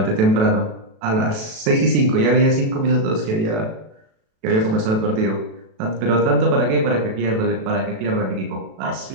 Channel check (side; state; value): left; late; 37 ms